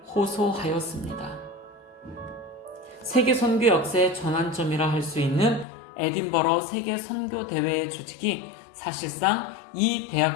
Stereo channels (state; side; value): drops out; right; at 5.7 s